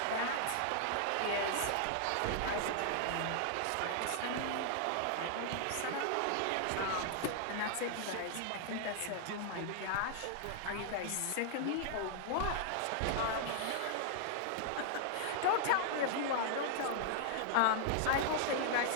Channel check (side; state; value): both; different; correlation -0.01